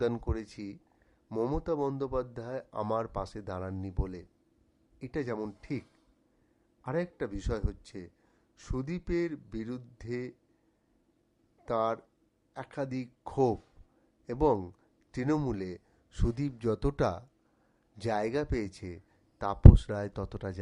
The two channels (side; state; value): both; identical; correlation 1.00